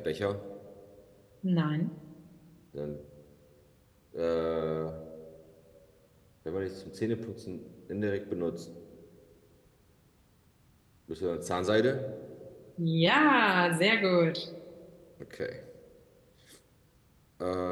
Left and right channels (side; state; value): both; identical; correlation 1.00